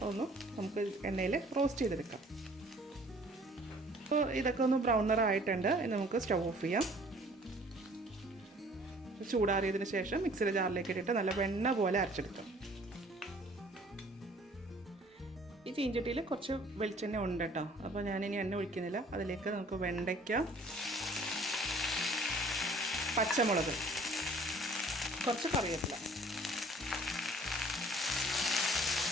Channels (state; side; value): normal; both; correlation 0.54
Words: ഒന്ന് നമുക്ക് എണ്ണയിൽ റോസ്റ്റ് ചെയ്തെടുക്കാം. അപ്പോൾ ഇതൊക്കെ ഒന്ന് ബ്രൗൺ നിറായിട്ടുണ്ട്. ഇനി നമുക്ക് സ്റ്റവ് ഓഫ് ചെയ്യാം. ചൂടാറിയതിന് ശേഷം മിക്സിയുടെ ജാറിലേക്ക് ഇട്ടിട്ട് നല്ല വെണ്ണ പോലെ അരച്ചെടുക്കാം. ഈ ചീഞ്ചട്ടിയിൽ കുറച്ച് വെളിച്ചെണ്ണ ഉണ്ട് കേട്ടോ. അപ്പോൾ ഞാനിനി എണ്ണ ഒഴിക്കുന്നില്ല. അതിലേക്ക് നമുക്ക് വെണ്ടയ്ക്ക, പച്ചമുളക്, കുറച്ച് കറിവേപ്പില,